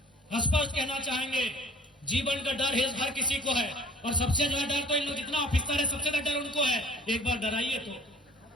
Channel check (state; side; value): normal; both; correlation 0.50